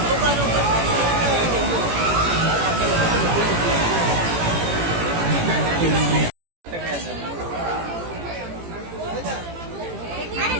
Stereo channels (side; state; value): left; late; 18 ms